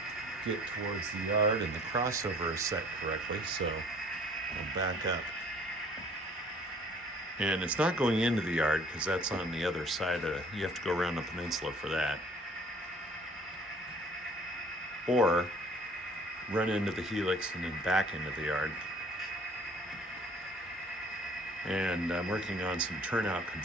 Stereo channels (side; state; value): both; normal; correlation 0.54